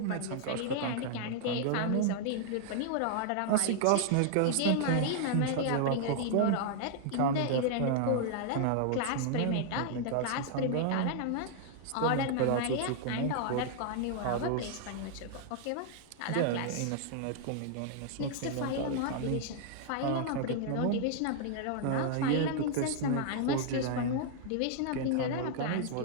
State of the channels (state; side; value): different; both; correlation 0.00